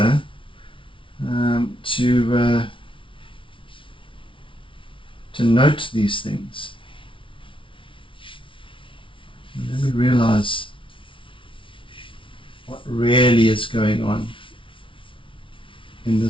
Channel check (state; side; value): late; right; 0.25 ms